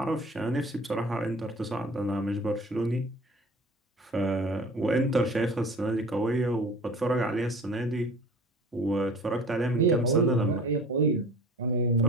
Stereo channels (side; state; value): both; normal; correlation 0.42